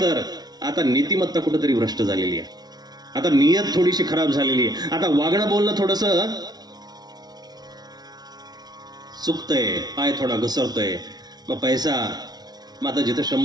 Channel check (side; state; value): left; late; 0.19 ms